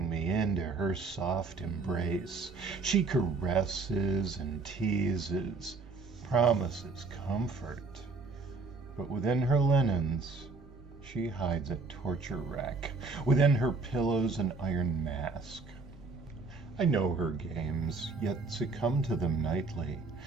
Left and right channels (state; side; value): quieter; left; 4.0 dB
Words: me into her soft embrace. She caresses and teases, promises comfort. But within her linens, she hides a torture rack. Within her pillows, an iron mask. I know her games, yet succumb to them nightly,